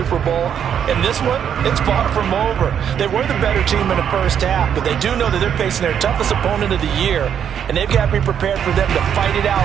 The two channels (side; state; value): left; quieter; 8.6 dB